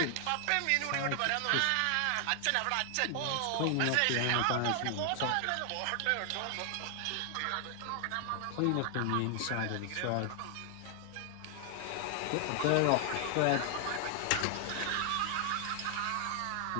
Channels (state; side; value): different; both; correlation 0.00